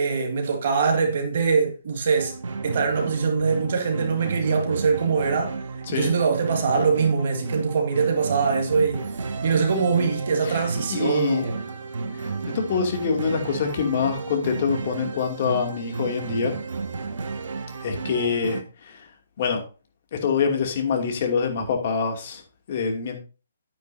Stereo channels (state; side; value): inverted; both; correlation -0.68